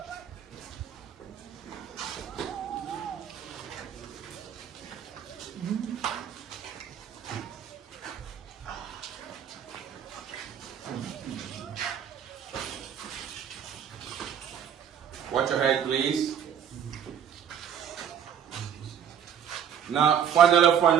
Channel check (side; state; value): left; quieter; 8.7 dB